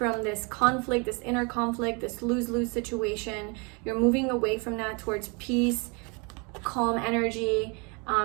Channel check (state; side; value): quieter; left; 31.5 dB